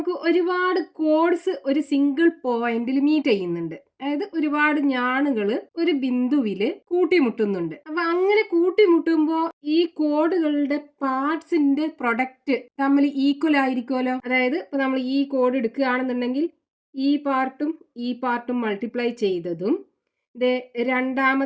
ഒരുപാട് കോഡ്സ് ഒരു സിംഗിൾ പോയിന്റിൽ മീറ്റ് ചെയ്യുന്നുണ്ട്. അതായത് ഒരുപാട് ഞാണുകൾ ഒരു ബിന്ദുവില് കൂട്ടിമുട്ടുന്നുണ്ട്. അപ്പൊ അങ്ങനെ കൂട്ടിമുട്ടുമ്പോ ഈ കോഡുകളുടെ പാർട്സിന്റെ പ്രൊഡക്റ്റ് തമ്മിൽ ഈക്വൽ ആയിരിക്കുമല്ലോ. അതായത് ഇപ്പൊ നമ്മൾ ഈ കോഡ് എടുക്കുകയാണെന്നുണ്ടെങ്കിൽ ഈ പാർട്ടും മൾട്ടിപ്ലൈ ചെയ്തതും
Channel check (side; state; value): both; identical; correlation 1.00